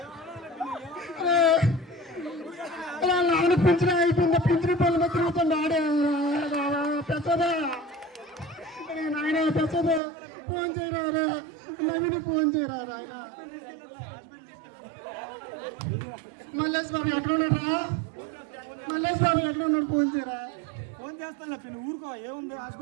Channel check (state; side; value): drops out; left; at 10.0 s